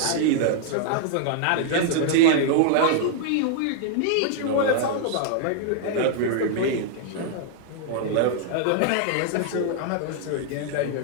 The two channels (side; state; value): both; different; correlation -0.01